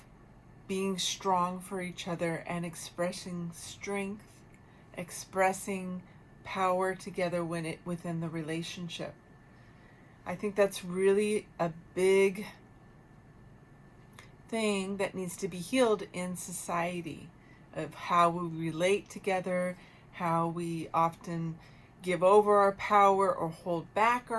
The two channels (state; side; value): identical; both; correlation 1.00